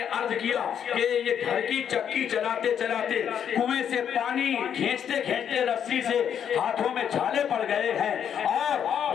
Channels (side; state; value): right; quieter; 8.6 dB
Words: عرض کیا کہ یہ گھر کی چکی چلاتے چلاتے کنویں سے پانی کھینچتے کھینچتے رسی سے ہاتھوں میں چھالے پڑ گئے ہیں۔